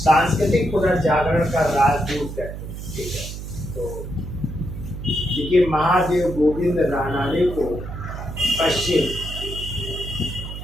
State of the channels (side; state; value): right; noise; hum, 9 dB below the sound